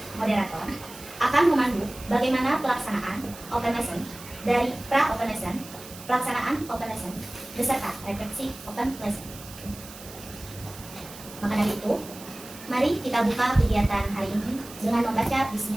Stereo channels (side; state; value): right; noise; hiss, 16 dB below the sound